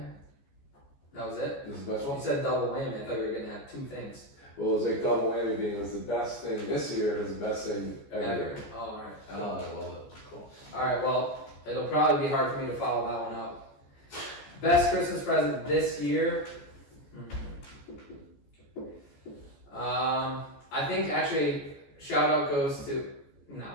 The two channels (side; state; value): right; late; 14 ms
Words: That was it? This is the best You one. said double whammy. I thought you were gonna have two things. Well, it was like double whammy being it was the best thing this year. It was the best thing ever. Oh, alright. I love it. Cool. Alright, well, it'll probably be hard for me to follow that one up. Best Christmas present this year? I think actually, shout out goes to,